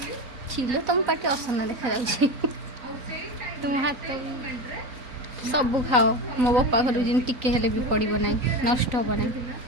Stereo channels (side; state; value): left; late; 3.9 ms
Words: छिलो तुम पाटी असना देखा जाऊँ तुम हाथ सबू खाओ मो बापा घर जिन टिके हेले भी पड़ो ना नष्ट हम ना